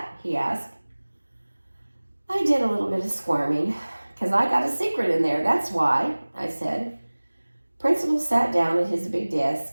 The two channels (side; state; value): both; inverted; correlation -1.00